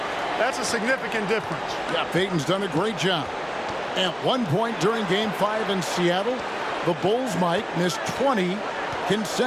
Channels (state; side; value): identical; both; correlation 1.00